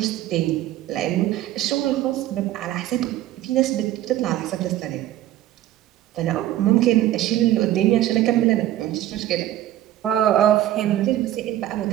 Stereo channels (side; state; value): left; quieter; 13.5 dB